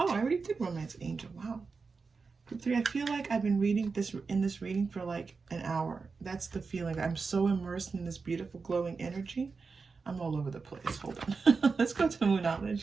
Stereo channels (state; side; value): quieter; left; 4.7 dB